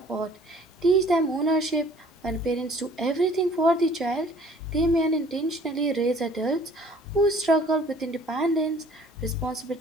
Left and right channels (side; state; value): both; normal; correlation 0.54